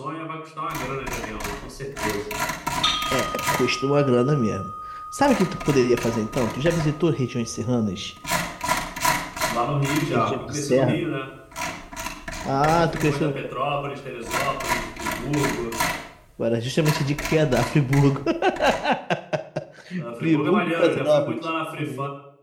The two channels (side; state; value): both; identical; correlation 1.00